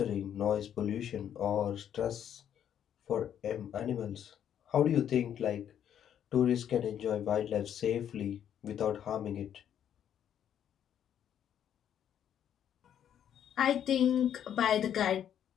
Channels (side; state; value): right; quieter; 9.6 dB